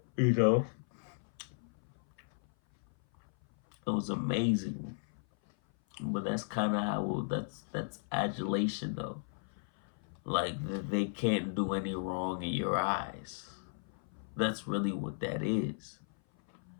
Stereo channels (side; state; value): right; silent; 54 dB below the other